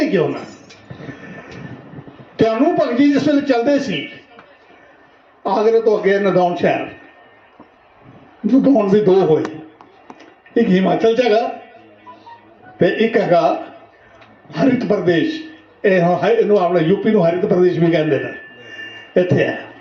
क्यों ना। त्यानू भगत जी जिस वेले चलते सी आगरे तो अगे नदौन शहर, नदौन भी 2 होए, एक हिमाचल च हैगा ते एक हैगा हरित प्रदेश। इनू अपना यूपी नू हरित प्रदेश भी कहते हैं। इत्थे है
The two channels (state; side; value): identical; both; correlation 1.00